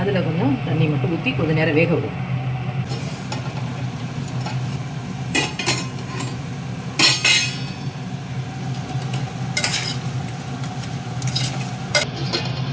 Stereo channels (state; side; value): identical; both; correlation 1.00